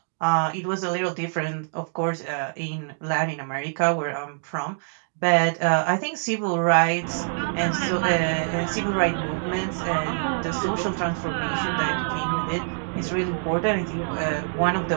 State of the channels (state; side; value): silent; left; digital silence